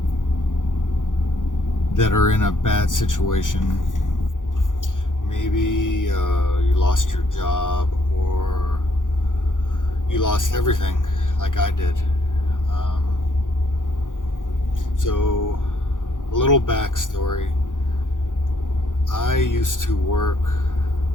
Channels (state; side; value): late; right; 0.88 ms